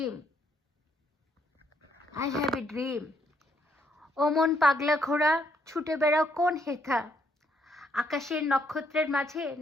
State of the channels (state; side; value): normal; both; correlation 0.72